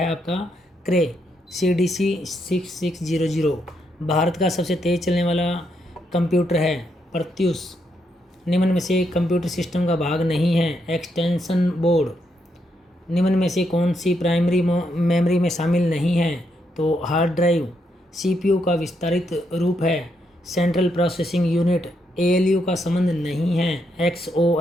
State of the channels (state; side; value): normal; both; correlation 0.79